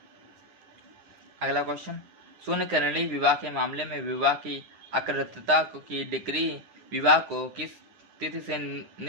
अगला क्वेश्चन, शून्य करणीय विवाह के मामले में विवाह की अकृतता की डिग्री विवाह को किस तिथि से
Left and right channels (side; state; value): left; late; 9.7 ms